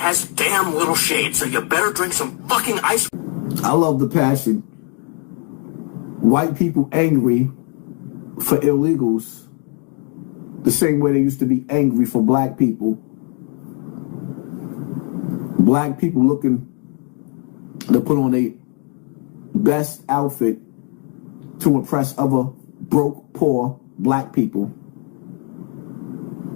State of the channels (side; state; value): right; quieter; 39.1 dB